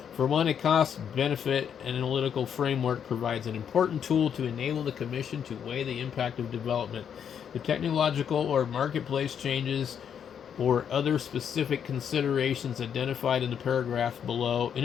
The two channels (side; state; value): right; quieter; 8.2 dB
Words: For one, a cost-benefit analytical framework provides an important tool to enable the Commission to weigh the impact of development, the technological or marketplace changes, or other specific considerations identified in the paragraph below. In